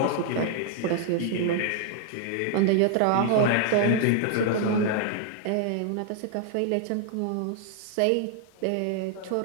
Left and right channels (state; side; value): different; both; correlation 0.00